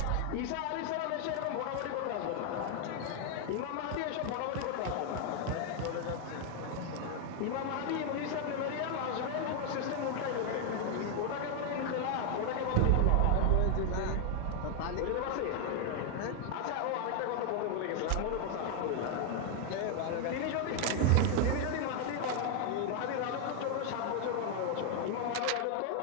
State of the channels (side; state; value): both; different; correlation 0.00